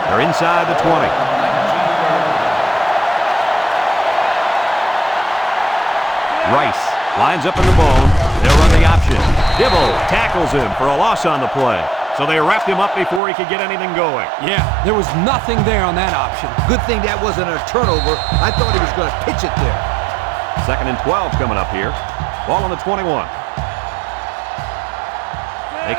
They're inside the 20. Rice lines up in the bone. They'll run the option. Dibble tackles him for a loss on the play. So they wrapped him up before he could get anything going. Yeah, there was nothing there on that option. Good thing that wasn't a turnover. I thought he was going to pitch it there. 2nd and 12 coming up here. Ball on the 21. They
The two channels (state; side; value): drops out; left; at 13.2 s